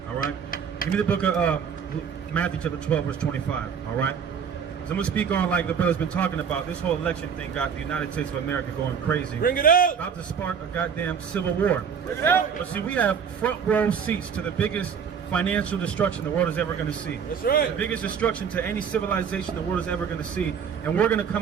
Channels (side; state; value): left; quieter; 7.0 dB